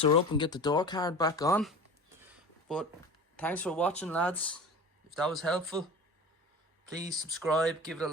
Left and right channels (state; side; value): normal; both; correlation 0.35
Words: her up and get the door card back on. But thanks for watching lads. If that was helpful, please subscribe, give it a